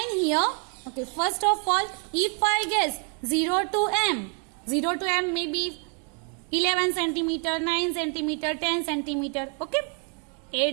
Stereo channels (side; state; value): left; quieter; 37.1 dB